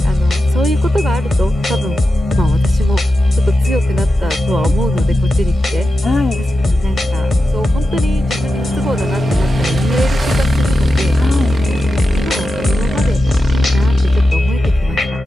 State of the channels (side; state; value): both; normal; correlation 0.91